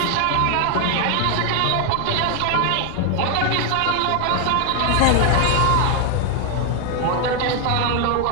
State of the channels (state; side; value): different; both; correlation 0.00